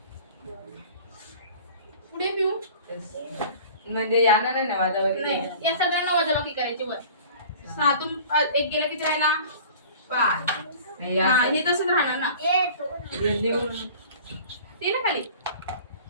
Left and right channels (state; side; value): inverted; both; correlation -0.44